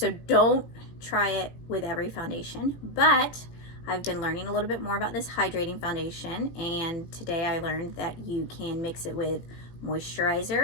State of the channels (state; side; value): late; right; 18 ms